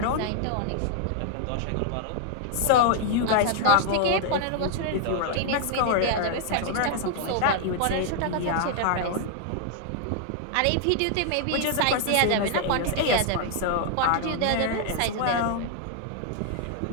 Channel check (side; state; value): both; different; correlation 0.00